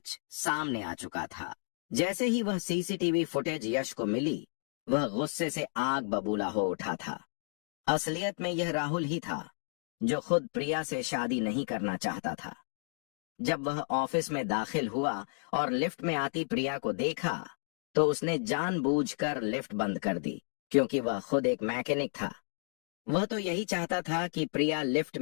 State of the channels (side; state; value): right; silent; 56 dB below the other